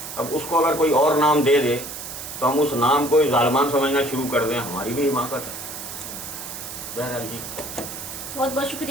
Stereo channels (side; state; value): right; noise; hiss, 9 dB below the sound